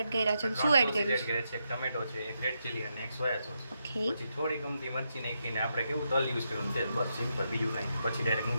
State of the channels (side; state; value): both; inverted; correlation -0.83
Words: કર્યા છે? શું એડ કર્યું છે? એક ટમેટો છે, એક રેડ ચીલી અને એક સોયા સોસ. ઓકે. પછી થોડી ગમતી મરચી નાખીને આપણે કેવું તલ યુઝ કરવાનું છે બસ સિમ્પલ, બીજું કાંઈ. પછી ડાયરેક્ટ